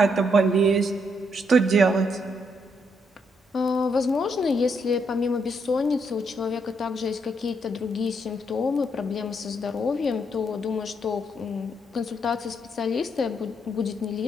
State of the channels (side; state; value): both; normal; correlation 0.75